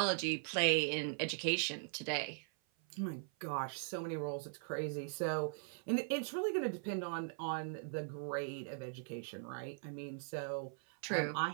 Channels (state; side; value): silent; left; 51 dB below the other